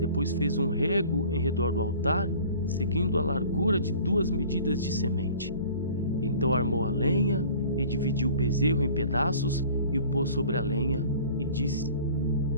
fez um rego em redor do altar, seguindo a largura de 2 medidas de semente. Então armou a lenha e dividiu o bezerro em pedaços e o pôs sobre a lenha e disse,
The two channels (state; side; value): inverted; both; correlation -0.47